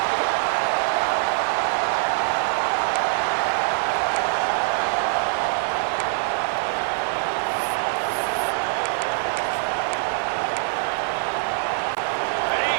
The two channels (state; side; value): silent; left; 63 dB below the other